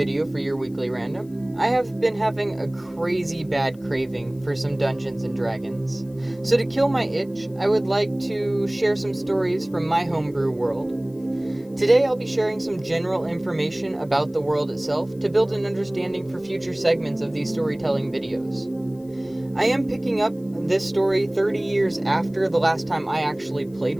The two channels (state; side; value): noise; left; hiss, 29 dB below the sound